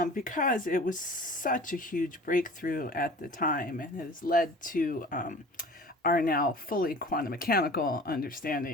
because it was such a huge breakthrough at the time and has led to our now fully quantum mechanical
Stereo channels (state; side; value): normal; both; correlation 0.43